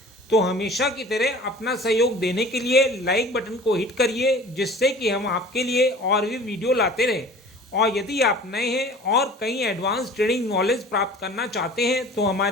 तो हमेशा की तरह अपना सहयोग देने के लिए लाइक बटन को हिट करिए, जिससे कि हम आपके लिए और भी वीडियो लाते रहें। और यदि आप नए हैं और कई एडवांस ट्रेडिंग नॉलेज प्राप्त करना चाहते हैं तो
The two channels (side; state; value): both; normal; correlation 0.44